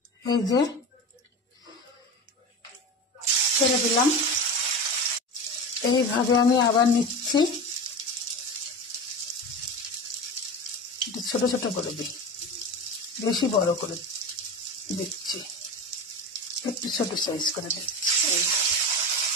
এই যে ছেড়ে দিলাম। এইভাবে আমি আবার নিচ্ছি, ছোট ছোট করে দিই, বেশি বড় করে দিচ্ছি, একটু ছোট সাইজ করে দিচ্ছি,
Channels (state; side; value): normal; both; correlation 0.26